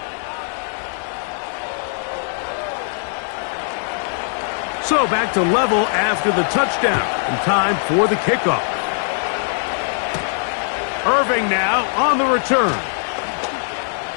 So back to level after the touchdown, and time for the kickoff. Irving now on the return.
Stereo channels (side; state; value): right; silent; digital silence